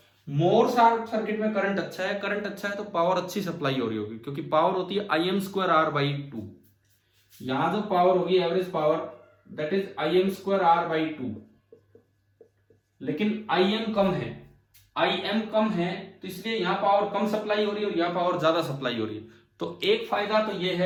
मोर शार्प सर्किट में करंट अच्छा है, करंट अच्छा है तो पावर अच्छी सप्लाई हो रही होगी, क्योंकि पावर होती है I M square R by two. यहां जो पावर होगी average power, that is I M square R by two. लेकिन आई एम कम है, आई एम कम है, तो इसलिए यहां पावर कम सप्लाई हो रही है और यहां पावर ज्यादा सप्लाई हो रही है। तो एक फायदा तो यह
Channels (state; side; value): identical; both; correlation 1.00